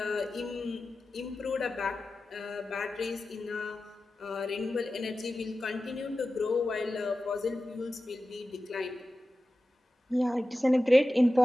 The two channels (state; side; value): normal; both; correlation 0.94